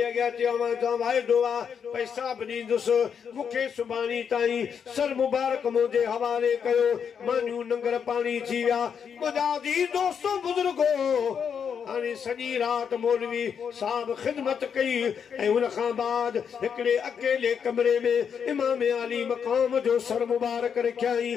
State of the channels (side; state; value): right; quieter; 7.2 dB